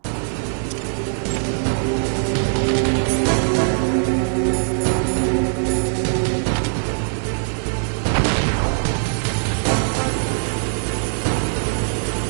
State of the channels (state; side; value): silent; left; 65 dB below the other